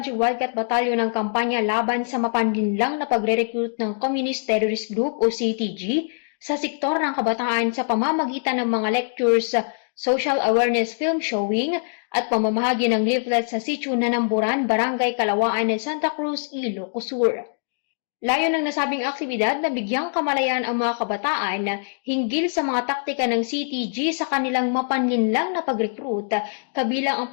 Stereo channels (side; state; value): right; silent; digital silence